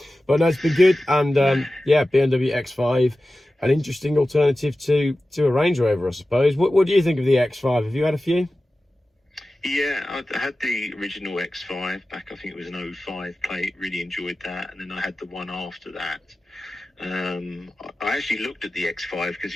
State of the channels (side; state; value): both; normal; correlation 0.95